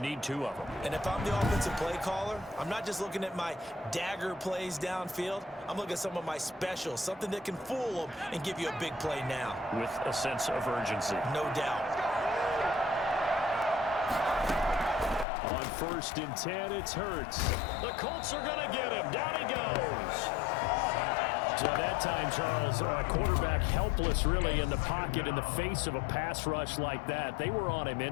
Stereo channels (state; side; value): drops out; right; at 15.2 s